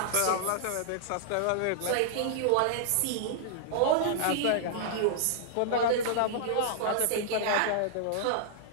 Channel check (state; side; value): different; both; correlation -0.01